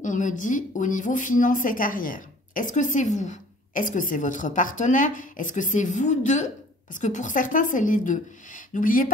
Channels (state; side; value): normal; both; correlation 0.51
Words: on me dit, au niveau finance et carrière. Est-ce que c'est vous? Est-ce que c'est votre partenaire? Est-ce que c'est vous deux? Parce que pour certains, c'est les deux. N'oubliez